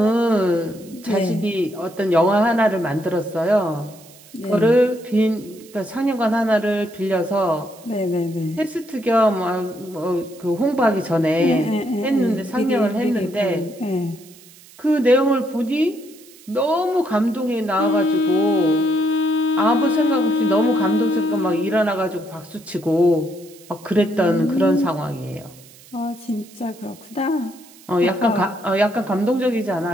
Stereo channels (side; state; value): right; noise; hiss, 23 dB below the sound